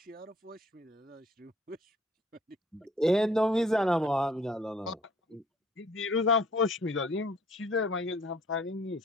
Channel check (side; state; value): both; normal; correlation 0.56